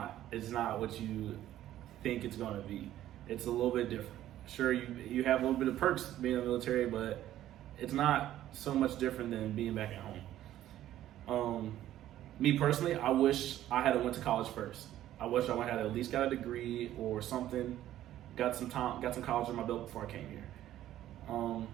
what you think it's gonna be. It's a little bit different. Sure, you have a little bit of perks being in the military, but it's not so much different than being back at home. Me personally, I wish I had went to college first. I wish I had at least got a degree or something, got some college on my belt before I came here.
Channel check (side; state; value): left; quieter; 12.9 dB